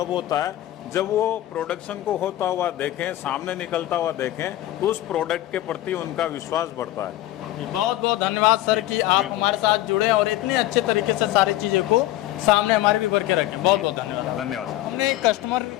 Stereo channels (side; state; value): right; quieter; 15.0 dB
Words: होता है जब वो प्रोडक्शन को होता हुआ देखें, सामने निकलता हुआ देखें तो उस प्रोडक्ट के प्रति उनका विश्वास बढ़ता है। बहुत बहुत धन्यवाद सर कि आप हमारे साथ जुड़े और इतने अच्छे तरीके से सारी चीज़ों को सामने हमारे भी भर के रखे। बहुत बहुत धन्यवाद। धन्यवाद सर। हमने